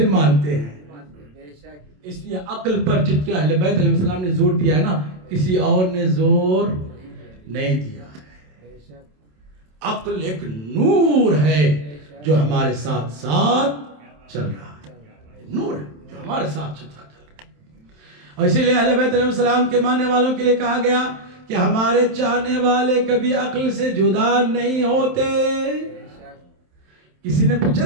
مانتے ہیں. اس لیے عقل پر جتنے اہل بیت علیہ السلام نے زور دیا ہے نا، کسی اور نے زور نہیں دیا ہے. عقل ایک نور ہے جو ہمارے ساتھ ساتھ چل رہا ہے، نور ہے جو ہمارے ساتھ چل رہا ہے. اور اسی لیے اہل بیت علیہ السلام کے ماننے والوں کے لیے کہا گیا کہ ہمارے چاہنے والے کبھی عقل سے جدا نہیں ہوتے. کسی نے پوچھا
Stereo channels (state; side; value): late; left; 27 ms